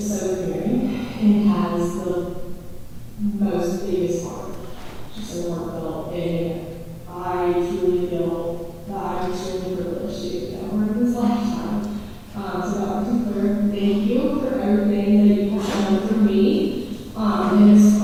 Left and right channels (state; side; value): identical; both; correlation 1.00